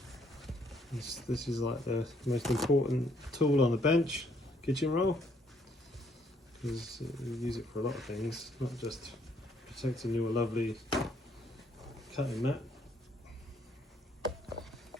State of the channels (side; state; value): both; normal; correlation 0.67